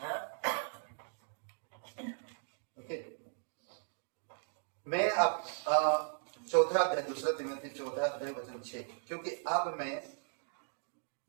मैं अब 4 अध्याय 2 तिमोथी 4 अध्याय वचन 6, क्योंकि अब मैं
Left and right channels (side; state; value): left; silent; digital silence